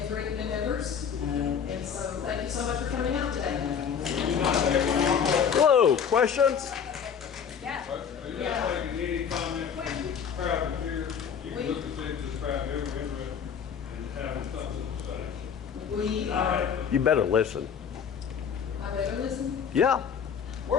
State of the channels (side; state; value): right; quieter; 7.3 dB